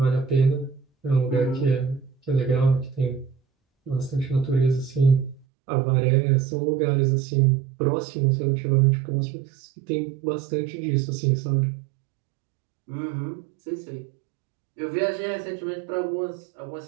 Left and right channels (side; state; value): left; drops out; at 5.5 s